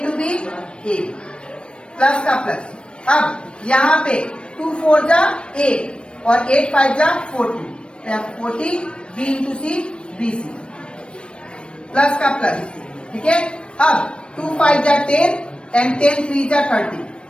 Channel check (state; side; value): late; right; 0.057 ms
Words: B a plus का प्लस। अब यहाँ पे 2 4 जा 8 और 8 5 जा 40, 40 b into C B C plus का प्लस। ठीक है, अब 2 5 जा 10 एंड 10 3 जा 30,